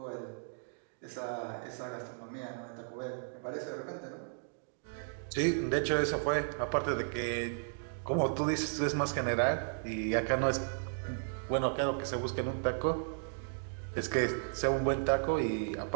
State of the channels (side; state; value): left; silent; digital silence